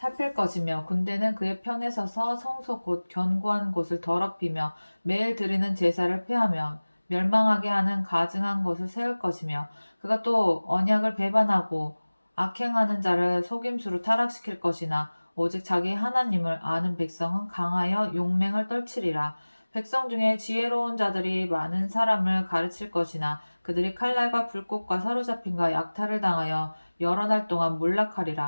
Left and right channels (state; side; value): inverted; both; correlation -1.00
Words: 것이며 군대는 그의 편에 서서 성소 곧 견고한 곳을 더럽히며 매일 드리는 제사를 폐하며 멸망하게 하는 가증한 것을 세울 것이며 그가 또 언약을 배반하고 악행하는 자를 속임수로 타락시킬 것이나 오직 자기 하나님을 아는 백성은 강하여 용맹을 떨치리라. 백성 중에 지혜로운 자들이 많은 사람을 가르칠 것이나 그들이 칼날과 불꽃과 사로잡힘과 약탈을 당하여 여러 날 동안